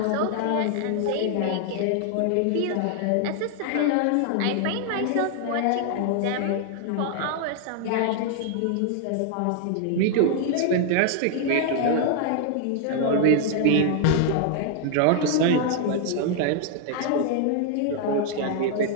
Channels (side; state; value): both; different; correlation 0.00